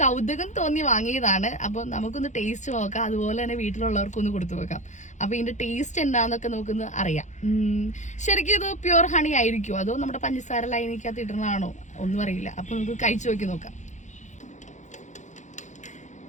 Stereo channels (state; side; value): late; right; 0.35 ms